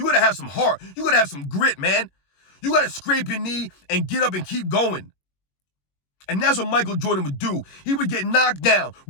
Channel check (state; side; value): late; right; 21 ms